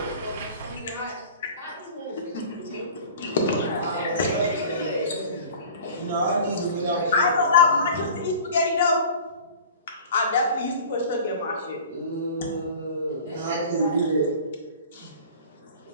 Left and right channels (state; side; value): inverted; both; correlation -0.42